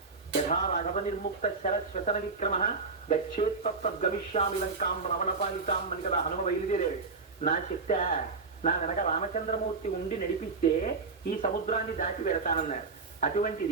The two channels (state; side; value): quieter; left; 4.2 dB